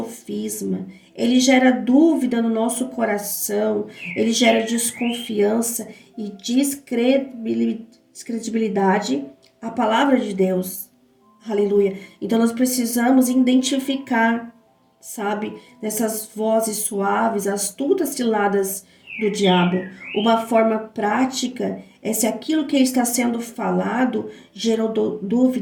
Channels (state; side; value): identical; both; correlation 1.00